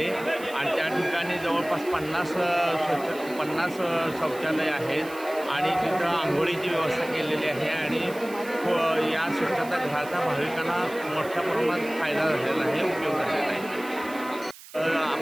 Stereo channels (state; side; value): noise; right; hiss, 18 dB below the sound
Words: आणि त्या ठिकाणी जवळपास 50 शौचालय आहेत आणि तिथं आंघोळीची व्यवस्था केलेली आहे आणि या स्वच्छतागृहाचा भाविकांना मोठ्या प्रमाणात फायदा झालेला आहे, उपयोग झालेला आहे.